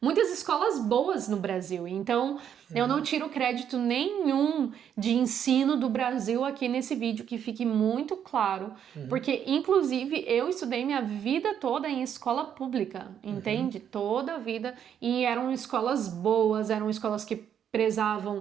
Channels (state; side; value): quieter; left; 8.9 dB